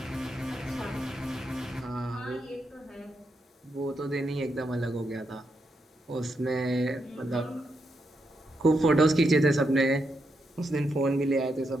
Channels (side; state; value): both; normal; correlation 0.82